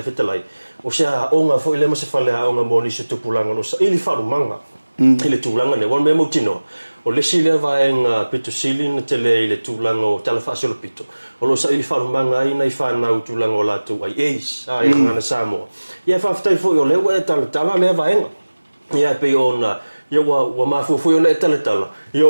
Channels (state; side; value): inverted; both; correlation -1.00